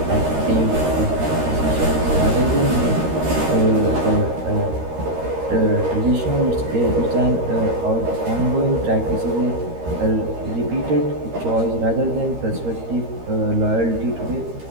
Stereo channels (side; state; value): left; late; 13 ms